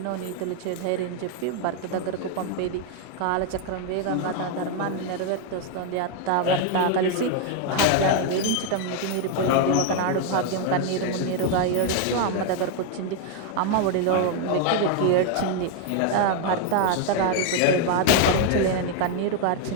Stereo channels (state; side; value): different; both; correlation 0.01